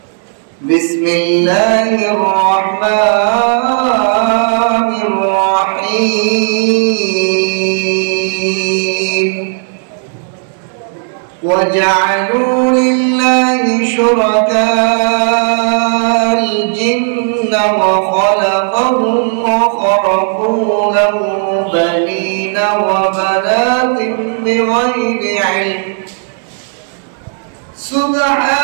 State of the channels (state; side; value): silent; left; digital silence